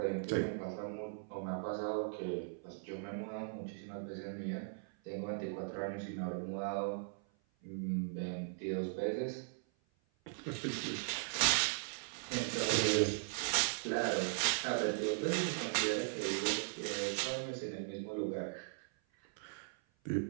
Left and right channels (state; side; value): silent; left; 52 dB below the other